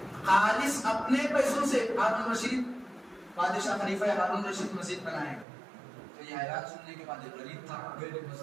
خالص اپنے پیسوں سے ہارون رشید بادشاہ خلیفہ ہارون رشید مسجد بنائے گا. تو یہ اعلان سننے کے بعد غریب تھا،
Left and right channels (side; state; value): left; drops out; at 5.5 s